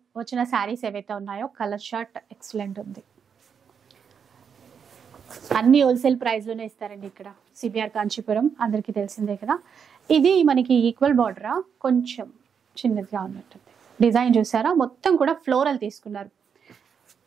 వచ్చిన శారీస్ ఏవైతే ఉన్నాయో కలర్ షర్ట్ ఎక్సలెంట్ ఉంది. అన్ని హోల్సేల్ ప్రైస్ లోనే ఇస్తారండి ఇక్కడ సిబిఆర్ కాంచీపురం, అందరికీ తెలిసిందే కదా. ఇది మనకి ఈక్వల్ బార్డరా, కొంచెం చిన్నదిగా ఉన్నట్టుంది. డిజైన్ చూసారా, మొత్తం కూడా ఫ్లోరల్ తీసుకున్నారు.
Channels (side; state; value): left; quieter; 6.9 dB